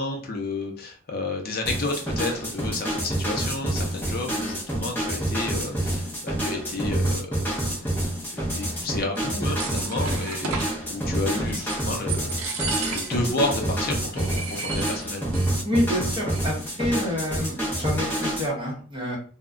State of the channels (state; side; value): normal; both; correlation 0.52